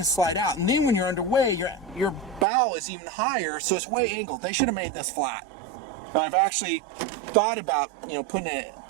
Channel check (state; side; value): drops out; left; at 2.5 s